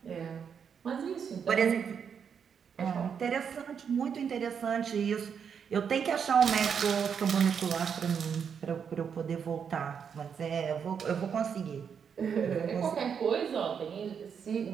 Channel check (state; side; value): quieter; left; 7.1 dB